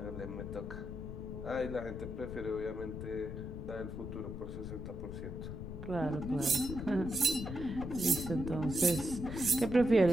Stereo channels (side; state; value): left; noise; rumble, 8 dB below the sound